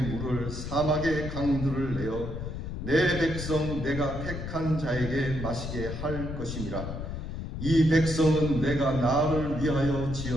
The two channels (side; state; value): left; noise; rumble, 6 dB below the sound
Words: 물을 사막의 강들을 내어 내 백성 내가 택한 자에게 마시게 할 것임이라. 이 백성은 내가 나를 위하여